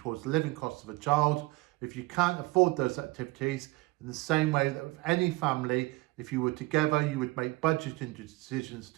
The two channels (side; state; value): left; quieter; 21.9 dB